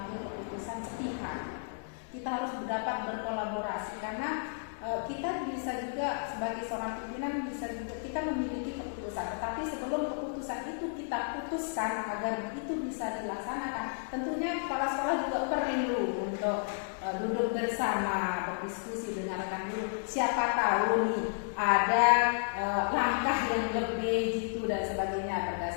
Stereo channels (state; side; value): silent; right; digital silence